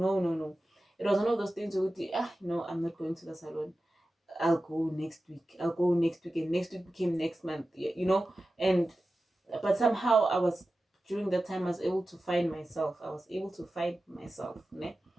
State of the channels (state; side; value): normal; both; correlation 0.94